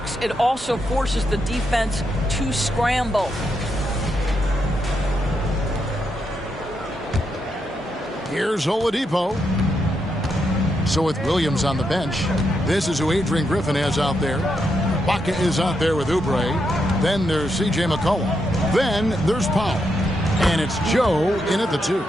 It also forces the defense to scramble. Here's Oladipo. So with Williams on the bench, this is who Adrian Griffin has out there. Baca is out there with Oubre. Then there's C.J. McCollum. Then there's Powell. And it's Joe in at the 2.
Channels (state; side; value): normal; both; correlation 0.81